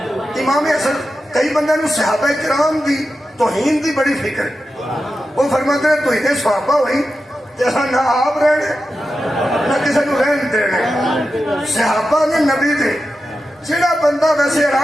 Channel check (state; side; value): normal; both; correlation 0.91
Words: ਇਮਾਮ ਹਸਨ ਕਈ ਬੰਦਿਆਂ ਨੂੰ ਸਹਾਬਾ ਕਿਰਾਮ ਦੀ ਤੋਹੀਨ ਦੀ ਬੜੀ ਫਿਕਰ ਉਹ ਫਰਮਾਉਂਦੇ ਨੇ ਤੁਸੀਂ ਦੇ ਸਹਾਬਾ ਹੋਈ ਤੇ ਅਸਾਂ ਨਾ ਆਪ ਰਹਿਣੇ ਨਾ ਕਿਸੇ ਨੂੰ ਰਹਿਣ ਦੇਣੇ ਸਹਾਬਾ ਨੇ ਨਬੀ ਦੇ ਜਿਹੜਾ ਬੰਦਾ ਵੈਸੇ